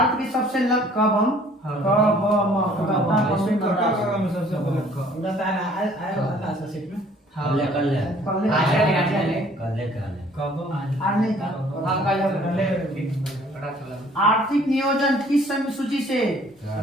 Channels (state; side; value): normal; both; correlation 0.56